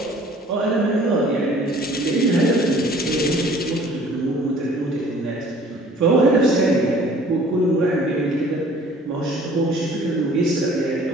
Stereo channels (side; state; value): both; normal; correlation 0.52